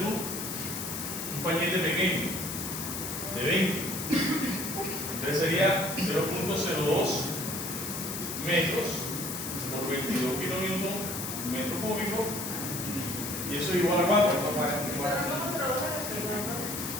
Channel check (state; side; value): noise; left; hiss, 5 dB below the sound